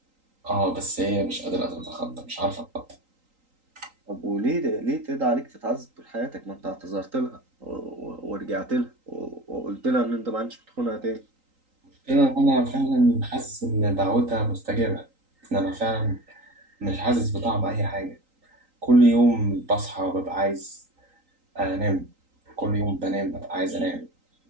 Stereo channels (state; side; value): late; left; 3.8 ms